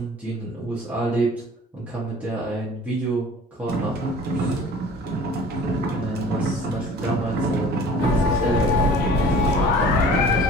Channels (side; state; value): both; normal; correlation 0.46